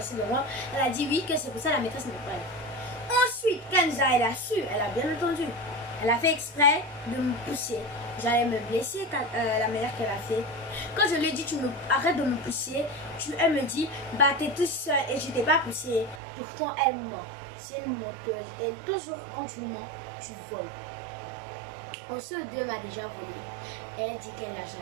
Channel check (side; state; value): left; drops out; at 16.2 s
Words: devant. Elle a dit oui, que c'est pour ça la maîtresse ne peut pas aller. Ensuite, Kenza, elle a su, elle a bien entendu. Elle a fait exprès de me pousser. J'allais me blesser la manière qu'elle a fait. Quand je lui ai dit arrête de me pousser, elle me dit bah t'es toute seule et je t'ai pas poussé. Pourtant elle ment. C'est une menteuse. Et toujours quand tu mens, tu voles. Ensuite, deux m'a déjà volé. Elle dit qu'elle n'a